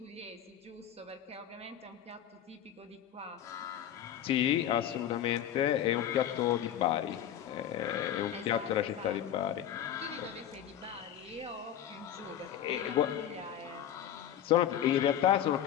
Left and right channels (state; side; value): quieter; right; 10.5 dB